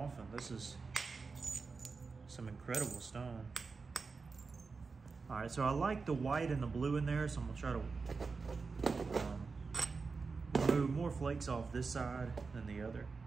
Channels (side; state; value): left; quieter; 4.5 dB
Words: This is some incredible stone. All right, so I like the white and the blue in there, so I'm gonna try to remove more flakes off this side than the other.